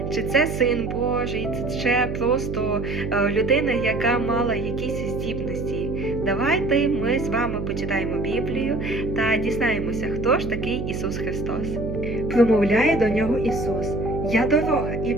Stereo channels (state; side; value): noise; right; hum, 4 dB below the sound